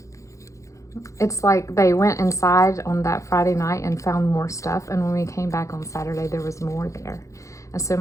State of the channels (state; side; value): late; right; 0.15 ms